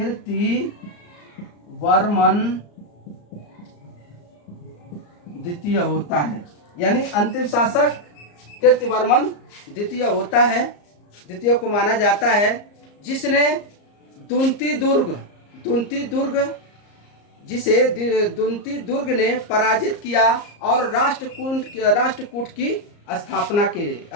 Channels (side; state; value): right; late; 34 ms